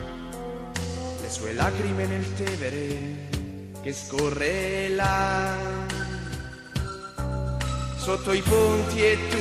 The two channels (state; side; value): identical; both; correlation 1.00